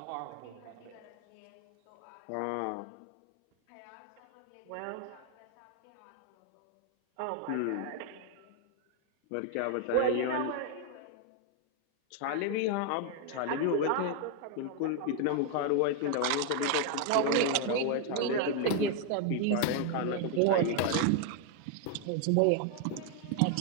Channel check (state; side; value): different; both; correlation 0.00